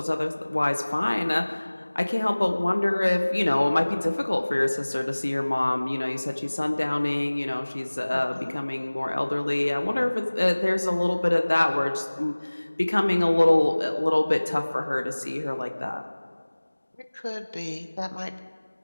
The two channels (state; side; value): inverted; both; correlation -1.00